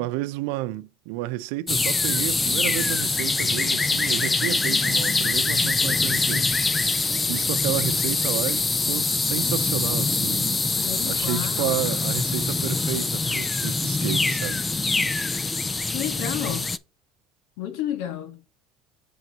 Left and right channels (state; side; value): normal; both; correlation 0.77